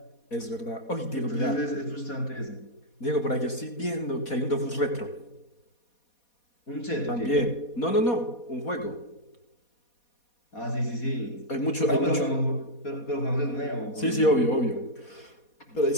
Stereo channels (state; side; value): late; right; 4.2 ms